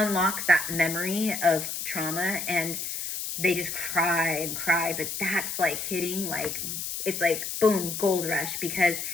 that memory of trauma, and they just cry and cry. But that's like hitting, like, it's like boom, gold rush, because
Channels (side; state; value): left; noise; hiss, 5 dB below the sound